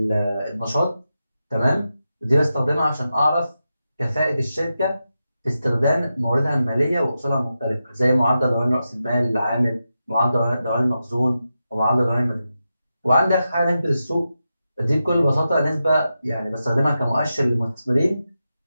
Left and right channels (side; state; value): both; inverted; correlation -0.90